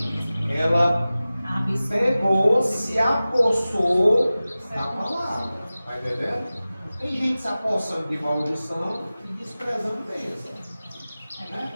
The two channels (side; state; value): both; inverted; correlation -0.97